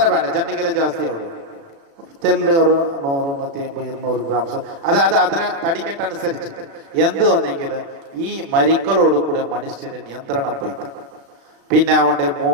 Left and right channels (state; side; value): late; left; 36 ms